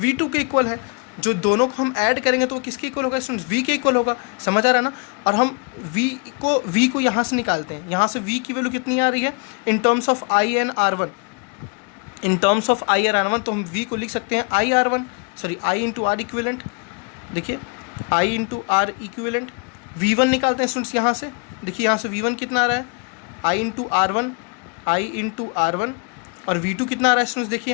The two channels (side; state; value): right; quieter; 35.1 dB